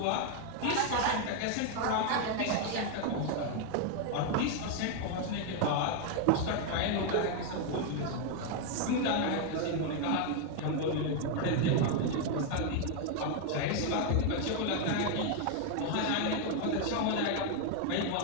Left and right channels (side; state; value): both; different; correlation 0.00